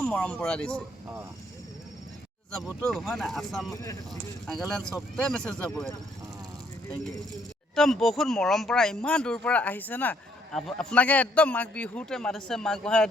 মৰম পৰা দিছে যাবতো হয় না আসাম নাগালেণ্ড চবতে মেছেজ যাব এইটো থেংক ইউ একদম বহুত মৰম পৰা ইমান দূৰ পৰা আহিছে না আপোনাকে একদম মাঘ বিহুতে মাতিছে মাঘ বহাই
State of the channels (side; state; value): both; normal; correlation 0.68